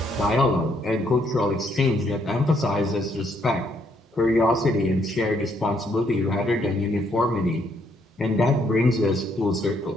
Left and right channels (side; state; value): both; normal; correlation 0.71